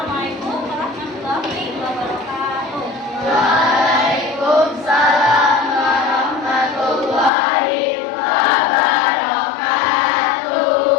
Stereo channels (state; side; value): drops out; right; at 7.3 s